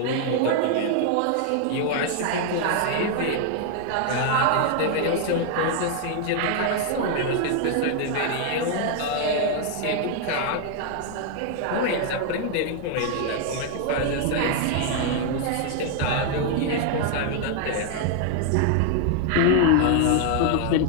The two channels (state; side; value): different; both; correlation 0.00